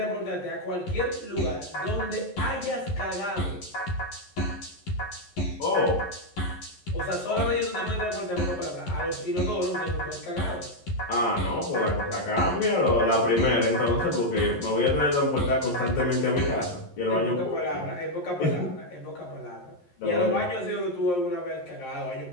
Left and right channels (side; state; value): right; late; 11 ms